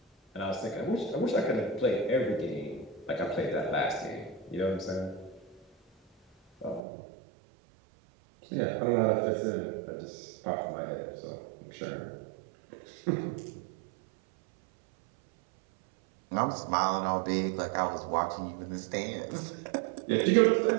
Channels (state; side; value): drops out; left; at 6.8 s